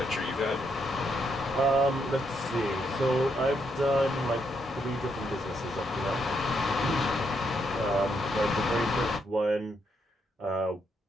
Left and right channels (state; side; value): normal; both; correlation 0.77